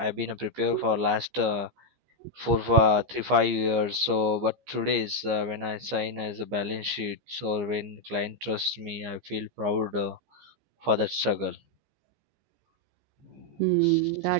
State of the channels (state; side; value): late; left; 15 ms